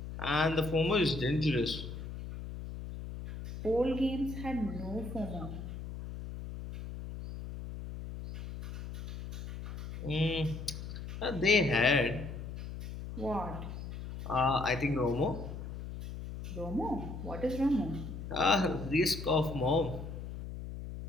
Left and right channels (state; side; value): noise; left; hum, 8 dB below the sound